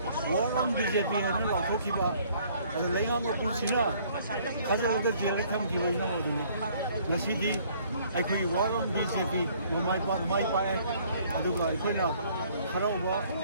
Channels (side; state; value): both; inverted; correlation -0.60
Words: ꯋꯥꯔꯝ BJP ꯍꯥꯏꯅ ꯂꯥꯎꯊꯣꯛꯈꯤꯕ ꯑꯗ ꯂꯩꯉꯥꯛ ꯃꯄꯨꯁꯤꯅ ꯊꯥꯖꯤꯜꯂꯒ ꯖꯦꯜꯗ ꯊꯝꯈꯤꯕ ꯏꯅꯥꯎ ꯑꯗꯨꯅꯤ ꯉꯁꯤꯗꯤ ꯑꯩꯈꯣꯏꯒꯤ ꯋꯥꯔꯝ BJP ꯃꯥꯏ ꯄꯥꯛꯑꯦ ꯑꯗꯨꯒ ꯑꯩꯈꯣꯏꯅ ꯍꯔꯥꯎꯕ